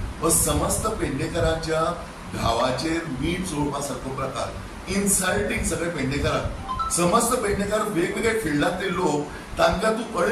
समस्त पेडणेकरांच्या गावाचेर मीठ चोळपासारको प्रकार, इन्सल्टिंग सगळे पेडणेकरांक। समस्त पेडणेकार वेगवेगळ्या फिल्डांतले लोक तांकां तूं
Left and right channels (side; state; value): both; identical; correlation 1.00